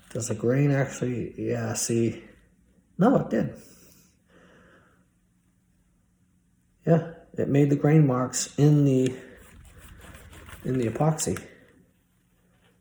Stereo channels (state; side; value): identical; both; correlation 1.00